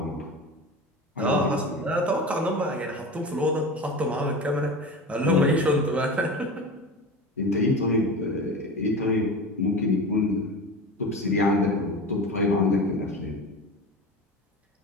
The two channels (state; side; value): normal; both; correlation 0.30